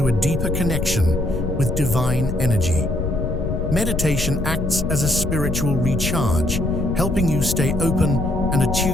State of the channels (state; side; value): noise; left; rumble, 3 dB below the sound